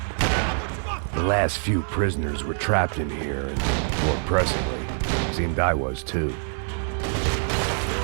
The last few prisoners were trapped in here, and more pressingly, seemed I was too.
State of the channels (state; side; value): silent; left; digital silence